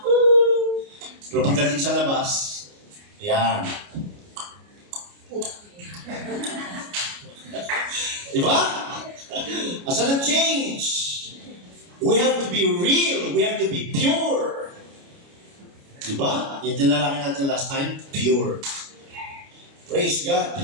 pero pagdating sa labas, yan. Diba? Asan ang change? We have to be real. We have to be pure. Diba? Yung tinalaki natin last time, pure. Praise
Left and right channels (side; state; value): left; late; 29 ms